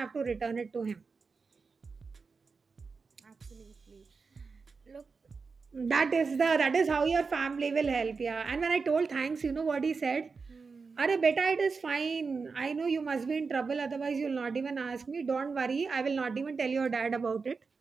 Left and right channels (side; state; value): left; quieter; 4.8 dB